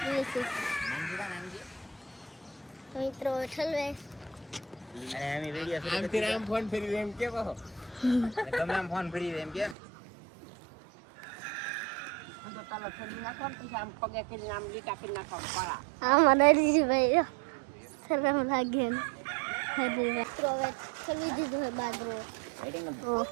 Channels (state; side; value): drops out; left; at 9.8 s